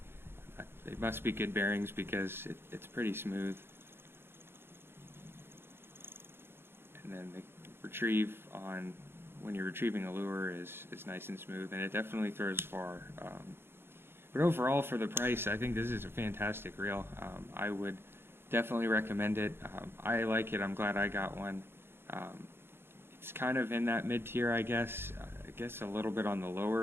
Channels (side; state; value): left; late; 0.11 ms